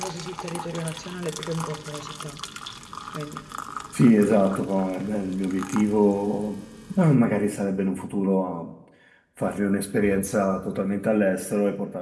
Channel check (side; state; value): both; identical; correlation 1.00